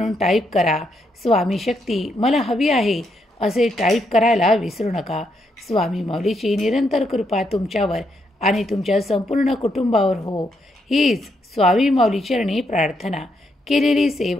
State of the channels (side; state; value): both; normal; correlation 0.78